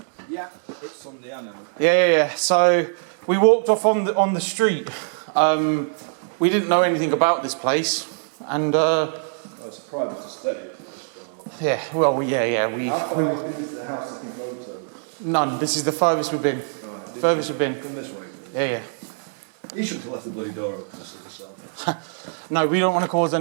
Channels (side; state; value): left; silent; digital silence